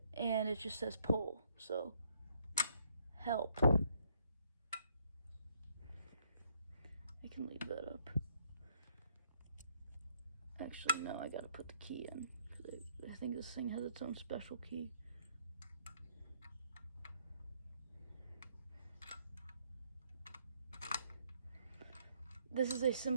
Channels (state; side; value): inverted; both; correlation -0.69